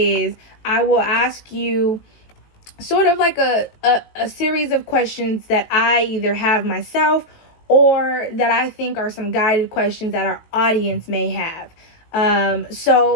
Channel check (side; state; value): right; late; 18 ms